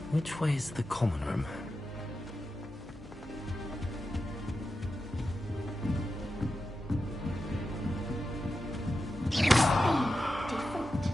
which way is the common room?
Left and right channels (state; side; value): normal; both; correlation 0.90